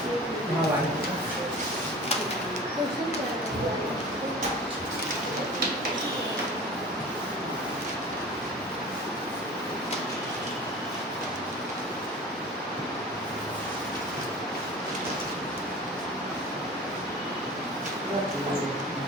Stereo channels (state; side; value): normal; both; correlation 0.39